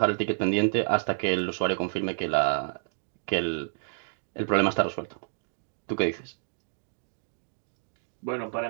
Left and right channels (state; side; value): silent; left; digital silence